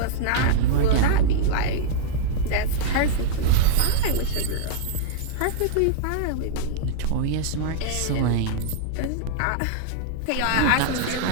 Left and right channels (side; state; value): both; different; correlation -0.01